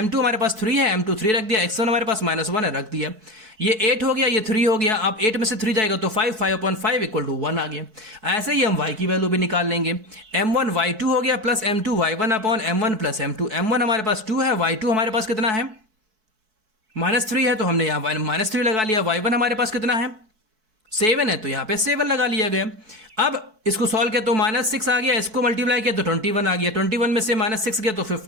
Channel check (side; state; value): left; late; 4.6 ms